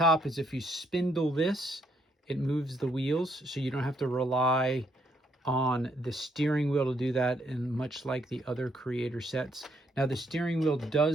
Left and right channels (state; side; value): normal; both; correlation 0.73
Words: is if you spindle this, it moves the wheels, so you don't have to rely on the steering wheel to do that, and much like the other Creator sets. Now the steering wheel